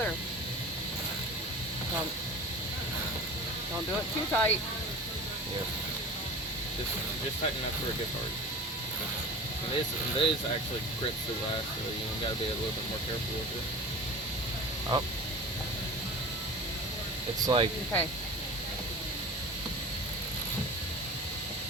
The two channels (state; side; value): normal; both; correlation 0.37